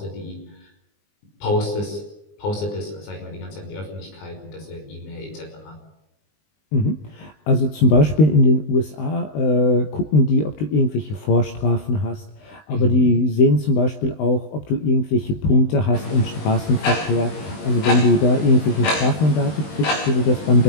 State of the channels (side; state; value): right; late; 20 ms